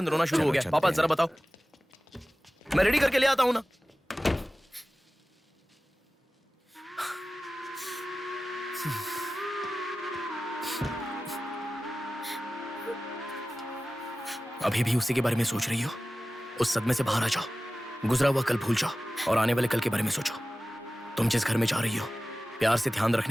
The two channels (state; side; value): normal; both; correlation 0.96